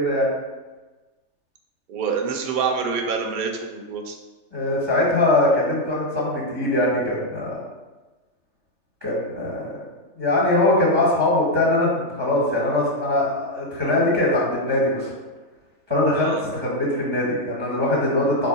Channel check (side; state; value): left; late; 3.3 ms